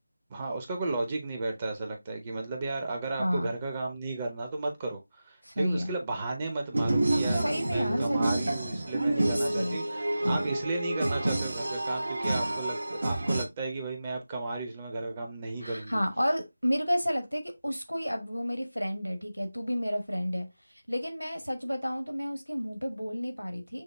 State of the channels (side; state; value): both; inverted; correlation -0.94